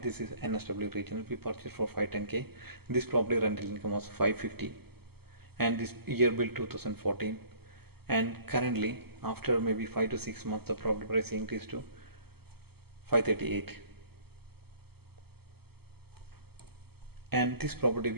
this is NSW Regional, we purchased for 510K. This property rental income was 550, and this year built 2014. And currently after maybe 5 to 6 months the property price increased to 538. And this property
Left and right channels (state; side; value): late; left; 0.96 ms